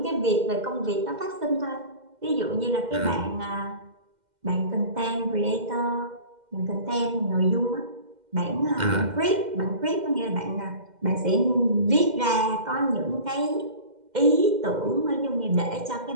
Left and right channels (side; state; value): left; late; 2.1 ms